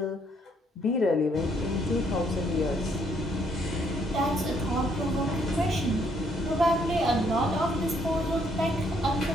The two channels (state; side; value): normal; both; correlation 0.69